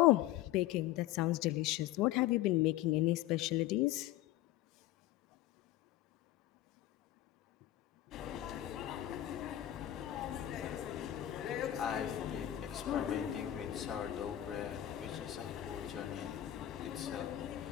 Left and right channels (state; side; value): quieter; right; 13.8 dB